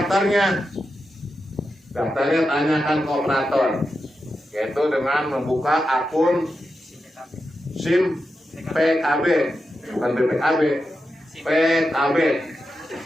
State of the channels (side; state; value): both; normal; correlation 0.89